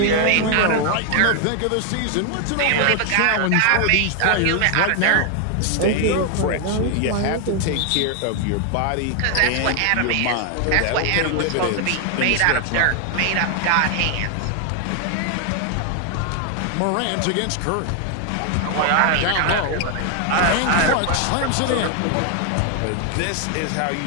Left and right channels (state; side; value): different; both; correlation 0.00